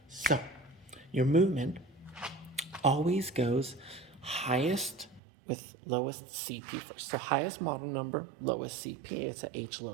So, your movement always goes highest with lowest CP first. So highest model number, lowest CP. It's a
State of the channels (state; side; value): drops out; left; at 5.2 s